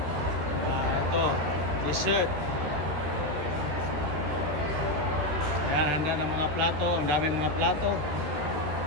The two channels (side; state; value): left; late; 13 ms